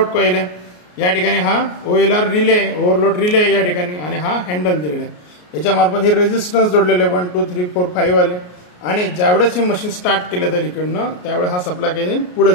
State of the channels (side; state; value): right; late; 33 ms